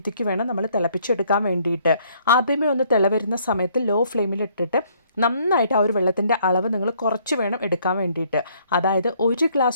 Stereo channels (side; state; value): both; inverted; correlation -0.65